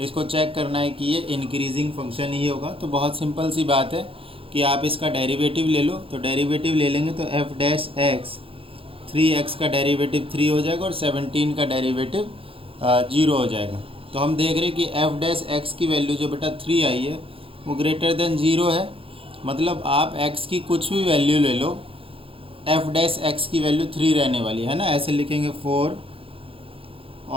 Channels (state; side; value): late; left; 0.27 ms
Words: इसको चेक करना है कि ये इंक्रीजिंग फंक्शन ही होगा। तो बहुत सिंपल सी बात है कि आप इसका डेरिवेटिव ले लो। तो डेरिवेटिव ले लेंगे तो एफ डैश एक्स 3x का डेरिवेटिव 3 हो जाएगा और 17 का डेरिवेटिव 0 हो जाएगा। तो हम देख रहे हैं कि एफ डैश एक्स की वैल्यू जो बेटा 3 आई है वो ग्रेटर देन 0 है। मतलब आप x की कुछ भी वैल्यू ले लो, एफ डैश एक्स की वैल्यू 3 रहने वाली है ना। ऐसे लिखेंगे for